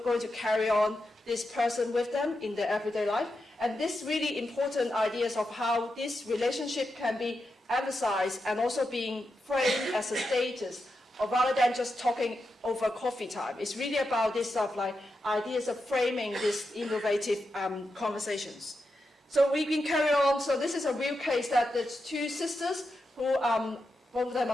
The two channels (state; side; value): normal; both; correlation 0.87